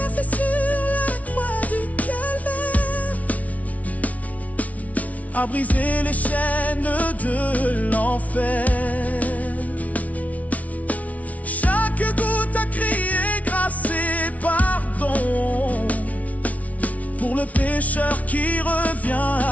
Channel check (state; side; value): late; right; 0.069 ms